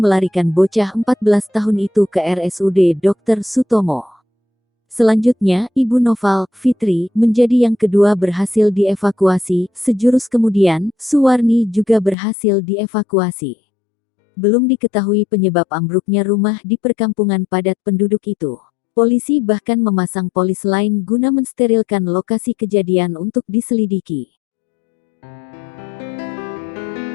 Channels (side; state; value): right; drops out; at 12.2 s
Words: bocah 14 tahun itu ke RSUD Dr. Sutomo. Selanjutnya, Ibu Noval, Fitri, menjadi yang kedua berhasil dievakuasi. Sejurus kemudian, Suwarni juga berhasil dievakuasi. Belum diketahui penyebab ambruknya rumah di perkampungan padat penduduk itu. Polisi bahkan memasang polis lain guna mensterilkan lokasi kejadian untuk diselidiki.